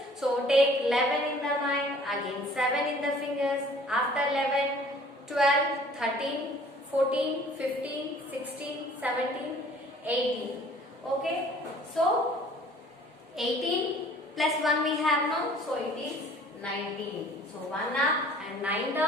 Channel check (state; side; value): normal; both; correlation 0.52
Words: So take 11 in the mind, again 7 in the fingers. After 11, 12, 13, 14, 15, 16, 17, 18. Okay. So 18 plus 1 we have now. So it is 19. So 1 up and 9